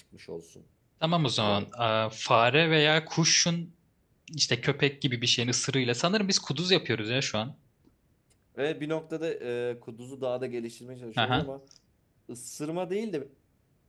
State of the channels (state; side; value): identical; both; correlation 1.00